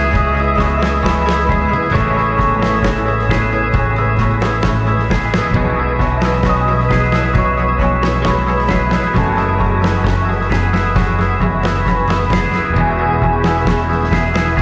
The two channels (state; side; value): identical; both; correlation 1.00